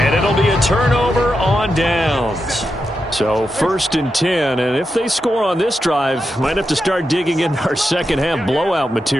it'll be a turnover on downs. So 1st and 10. And if they score on this drive, might have to start digging in our second half blowout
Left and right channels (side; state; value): both; normal; correlation 0.87